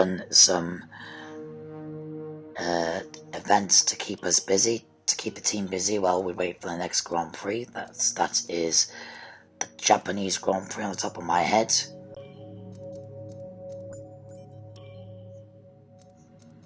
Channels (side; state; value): both; identical; correlation 1.00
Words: some events to keep us busy, to keep the team busy while we wait for the next Grand Prix. That is the Japanese Grand Prix on the top of my head.